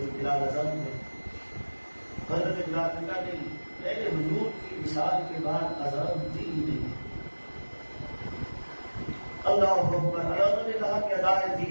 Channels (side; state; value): both; inverted; correlation -1.00